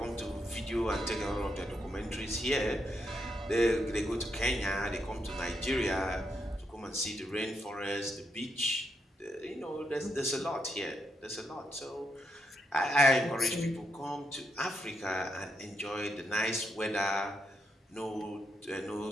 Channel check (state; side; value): normal; both; correlation 0.80